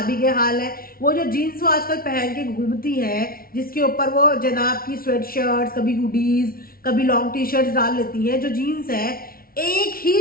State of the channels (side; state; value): right; late; 0.43 ms